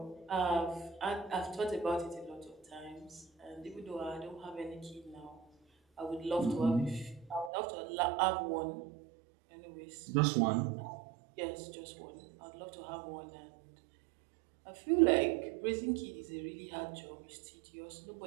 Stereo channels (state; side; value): drops out; left; at 7.5 s